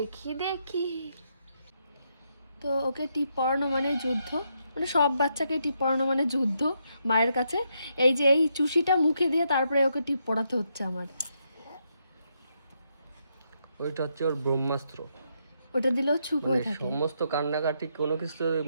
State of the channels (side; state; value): both; inverted; correlation -0.79